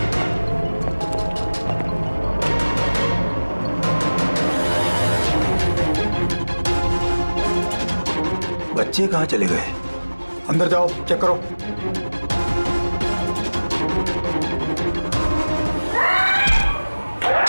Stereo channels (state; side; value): inverted; both; correlation -1.00